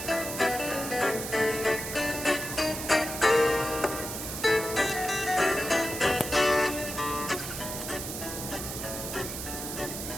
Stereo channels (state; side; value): noise; right; hiss, 6 dB below the sound